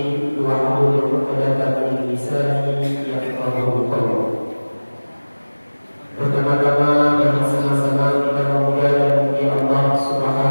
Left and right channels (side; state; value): both; inverted; correlation -1.00